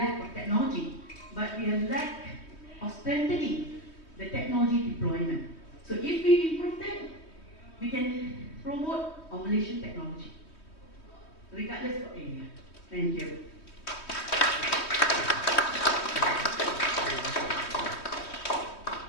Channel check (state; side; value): late; right; 3.2 ms